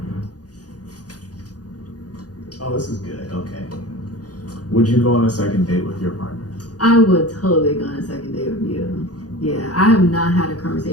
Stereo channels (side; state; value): right; late; 0.68 ms